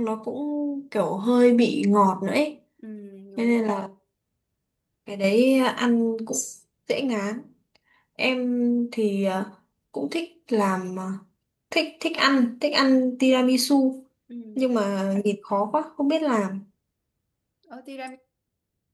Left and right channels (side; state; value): both; identical; correlation 1.00